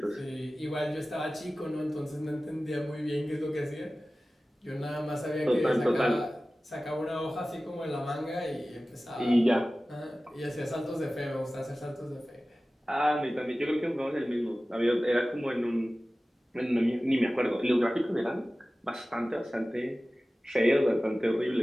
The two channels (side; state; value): both; normal; correlation 0.96